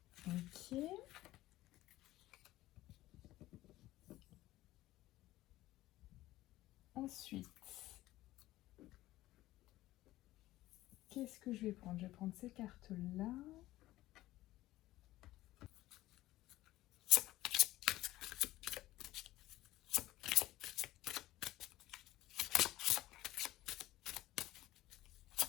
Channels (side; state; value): right; quieter; 16.2 dB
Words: Ok. Ensuite, qu'est-ce que je vais prendre? Je vais prendre ces cartes-là.